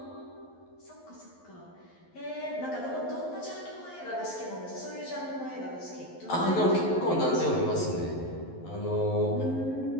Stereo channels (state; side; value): late; right; 11 ms